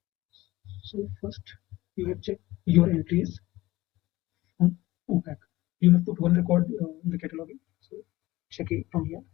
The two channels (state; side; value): quieter; right; 18.2 dB